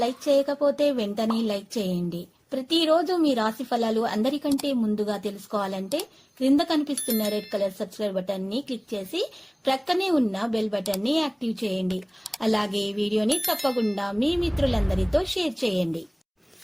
లైక్ చేయకపోతే వెంటనే లైక్ చేయండి. ప్రతిరోజు మీ రాశి ఫలాలు అందరికంటే ముందుగా తెలుసుకోవాలంటే క్రింద కనిపిస్తున్న రెడ్ కలర్ సబ్స్క్రైబ్ బటన్ ని క్లిక్ చేసి ప్రక్కనే ఉన్న బెల్ బటన్ ని యాక్టివ్ చేయండి. అలాగే ఈ వీడియోని తప్పకుండా మీ మిత్రులందరితో షేర్ చేయండి.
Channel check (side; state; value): both; identical; correlation 1.00